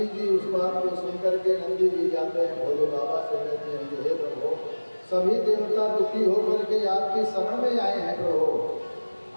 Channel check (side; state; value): both; inverted; correlation -1.00